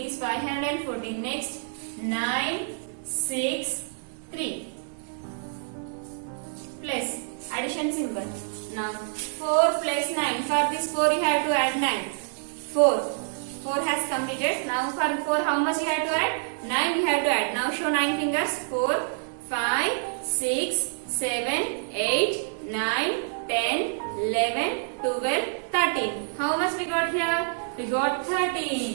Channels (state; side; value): silent; left; 60 dB below the other